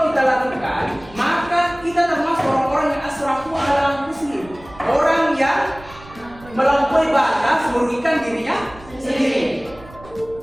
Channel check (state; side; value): noise; right; rumble, 21 dB below the sound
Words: kita lakukan, maka kita termasuk orang-orang yang asrafu ala anfusihim, orang yang melampaui batas merugikan dirinya sendiri.